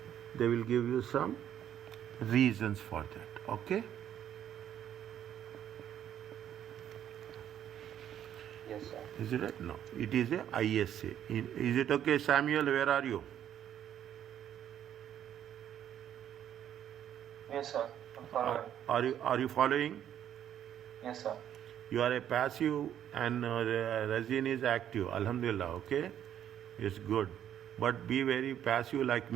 They will give you some reasons for that. Okay. Yes, sir. Is it right? No. It is a ISA. Is it okay, Samuel? Where are you? Yes, sir. I'm following. Are you following? Yes, sir. You are a passive and Razin is active. Alhamdulillah. Okay. It's good. But be very passive like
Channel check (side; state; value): left; quieter; 10.2 dB